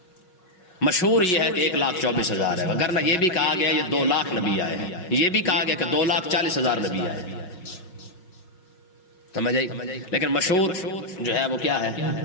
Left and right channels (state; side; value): late; right; 5.5 ms